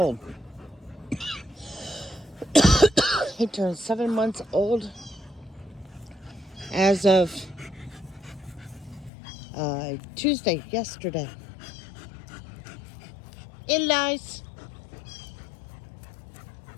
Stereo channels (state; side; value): drops out; right; at 9.1 s